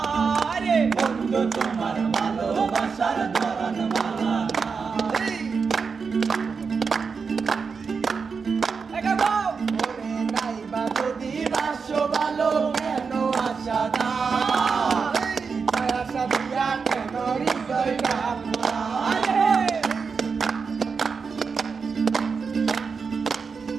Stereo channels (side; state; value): left; quieter; 5.3 dB